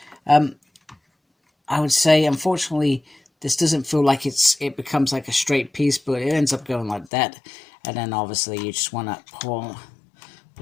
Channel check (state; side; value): drops out; right; at 7.1 s